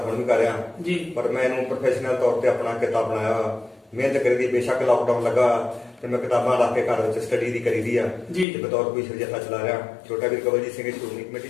ਹੁਣ ਵੀ ਕਰ ਰਿਹਾ। ਜੀ। ਪਰ ਮੈਂ ਇਹਨੂੰ ਪ੍ਰੋਫੈਸ਼ਨਲ ਤੌਰ ਤੇ ਆਪਣਾ ਕਿੱਤਾ ਬਣਾਇਆ। ਮਿਹਨਤ ਕਰੀਦੀ, ਬੇਸ਼ੱਕ ਲਾਕਡਾਊਨ ਲੱਗਾ ਤੇ ਮੈਂ ਕਿਤਾਬਾਂ ਲਾ ਕੇ ਘਰ ਵਿੱਚ ਸਟੱਡੀ ਦੀ ਕਰੀਦੀ ਆ। ਜੀ। ਤੇ ਬਤੌਰ ਕੋਈ ਜਥਾ ਚਲਾ ਰਿਹਾ। ਛੋਟਾ ਵੀਰ ਕਵਲਜੀਤ ਸਿੰਘ ਸ਼੍ਰੋਮਣੀ ਕਮੇਟੀ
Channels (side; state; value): right; drops out; at 8.5 s